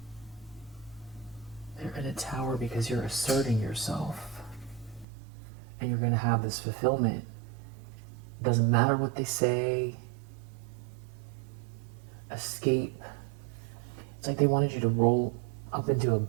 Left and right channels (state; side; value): drops out; left; at 5.1 s